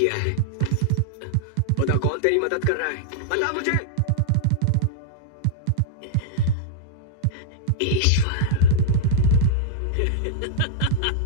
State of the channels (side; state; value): both; different; correlation -0.02